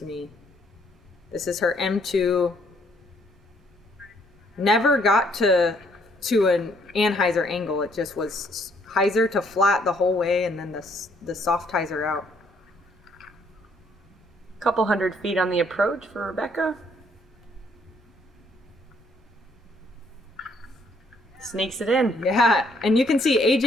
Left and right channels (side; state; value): both; normal; correlation 0.67